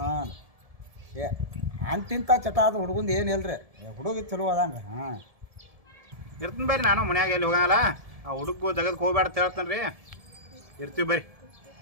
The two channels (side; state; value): left; late; 1.7 ms